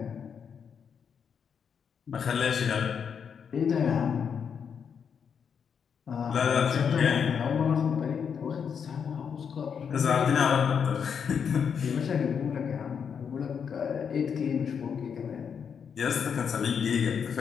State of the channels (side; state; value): right; quieter; 7.0 dB